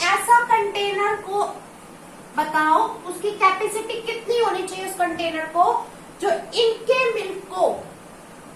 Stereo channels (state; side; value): identical; both; correlation 1.00